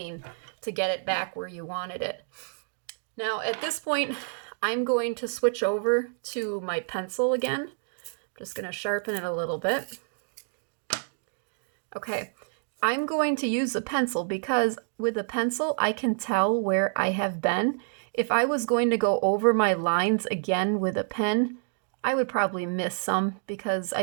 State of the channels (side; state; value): left; silent; digital silence